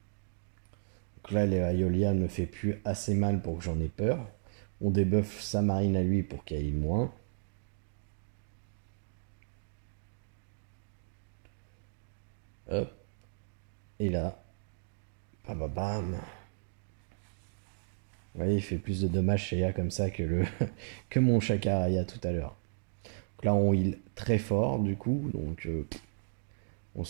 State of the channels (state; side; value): silent; left; digital silence